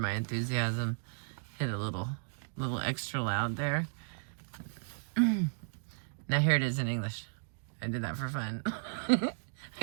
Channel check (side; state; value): left; silent; digital silence